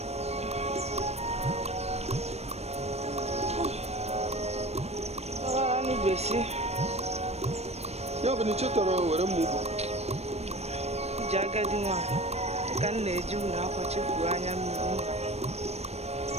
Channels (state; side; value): late; left; 0.31 ms